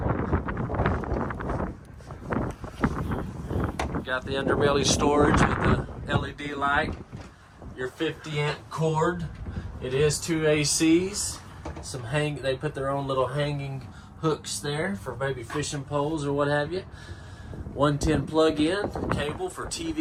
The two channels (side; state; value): both; identical; correlation 1.00